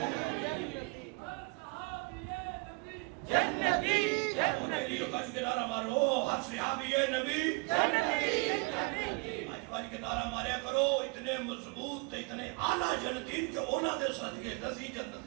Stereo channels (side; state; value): left; quieter; 29.6 dB